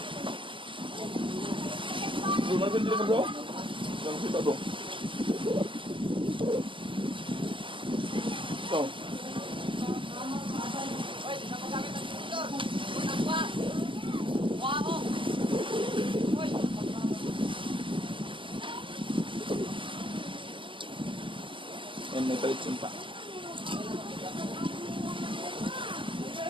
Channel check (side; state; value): left; late; 0.25 ms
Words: Gimana sih bro? Jangan kita bro. So. And may palit sinta.